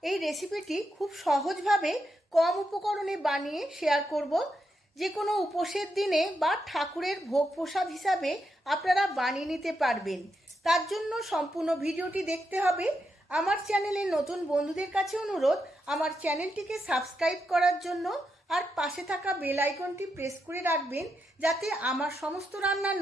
এই রেসিপিটি খুব সহজভাবে কম উপকরণে বানিয়ে শেয়ার করব। যে কোনো উপোসের দিনে বা ঠাকুরের ভোগ প্রসাদ হিসাবে আপনারা বানিয়ে নিতে পারবেন। তার জন্য সম্পূর্ণ ভিডিওটি দেখতে হবে। আমার চ্যানেলে নতুন বন্ধুদের কাছে অনুরোধ, আমার চ্যানেলটিকে সাবস্ক্রাইব করার জন্য আর পাশে থাকা বেল আইকনটি প্রেস করে রাখবেন, যাতে আমার সমস্ত রান্নার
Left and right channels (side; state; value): both; normal; correlation 0.84